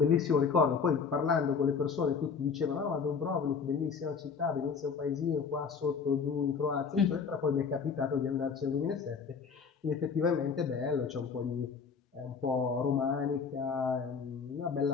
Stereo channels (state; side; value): quieter; right; 5.7 dB